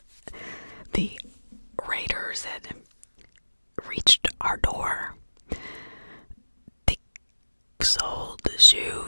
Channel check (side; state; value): both; inverted; correlation -1.00